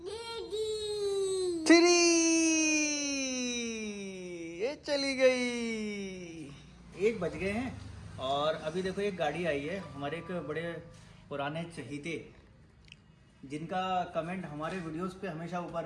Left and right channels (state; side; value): identical; both; correlation 1.00